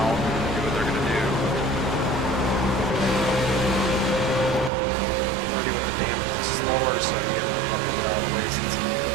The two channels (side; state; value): left; drops out; at 4.7 s